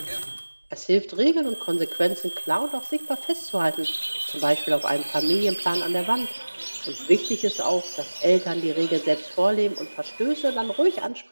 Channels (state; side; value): inverted; both; correlation -1.00